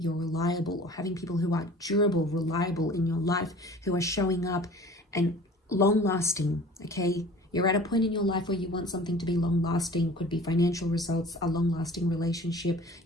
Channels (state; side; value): normal; both; correlation 0.45